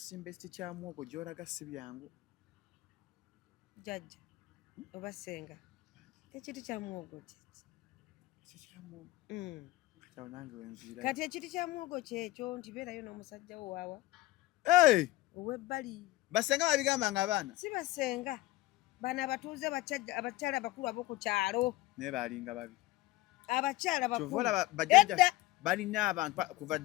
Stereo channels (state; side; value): quieter; right; 17.4 dB